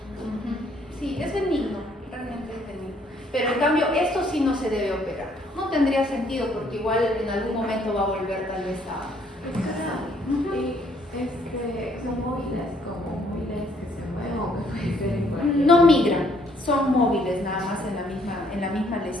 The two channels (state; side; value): normal; both; correlation 0.65